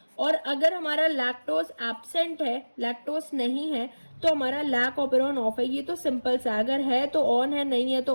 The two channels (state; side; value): inverted; both; correlation -1.00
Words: और अगर हमारा लैक्टोज एब्सेंट है, लैक्टोज नहीं है, तो हमारा लैक ऑपेरॉन ऑफ है। ये तो सिंपल सा, अगर है तो ऑन है, नहीं है तो